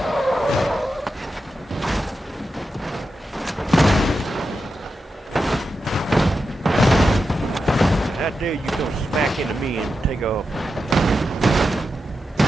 How dare you come smack into me and take off?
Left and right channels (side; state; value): both; normal; correlation 0.89